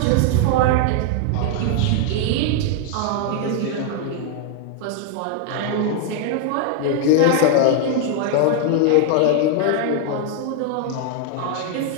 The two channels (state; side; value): different; both; correlation 0.00